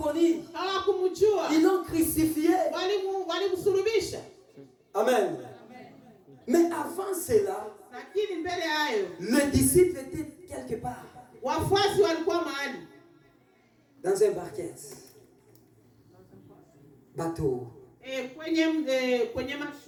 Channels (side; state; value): both; identical; correlation 1.00